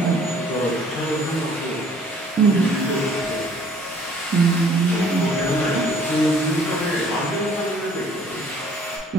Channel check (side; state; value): both; normal; correlation 0.57